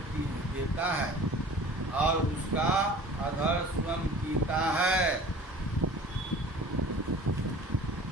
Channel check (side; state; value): both; normal; correlation 0.44